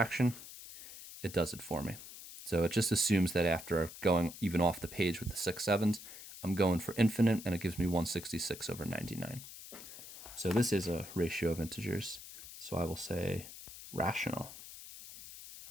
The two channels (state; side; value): noise; left; hiss, 14 dB below the sound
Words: It does it for me. So it just assumes that after going even off the page with the 6 sevens, I'm going for infinite, and it gives me 166 over 99. So this is a ratio of integers. So I will say rational.